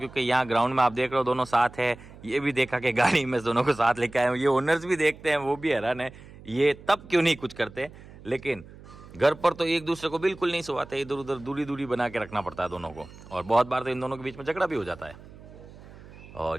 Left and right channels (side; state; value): right; noise; hum, 19 dB below the sound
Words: यहाँ ग्राउंड में आप देख रहे हो दोनों साथ है। ये भी देखा कि गाड़ी में दोनों को साथ लेके आए हूँ, ये ओनर्स भी देखते हैं, वो भी हैरान है ये तब क्यों नहीं कुछ करते। लेकिन घर पर तो एक दूसरे को बिल्कुल नहीं सुवाते, इधर उधर दूरी बना के रखना पड़ता है दोनों को, और बहुत बार तो इन दोनों के बीच में झगड़ा भी हो जाता है।